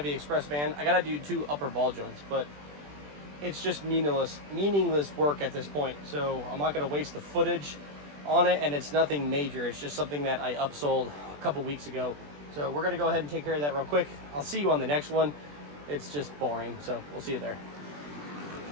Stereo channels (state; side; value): late; left; 20 ms